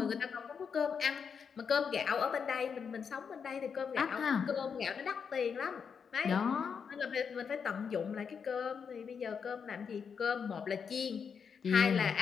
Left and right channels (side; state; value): right; quieter; 6.5 dB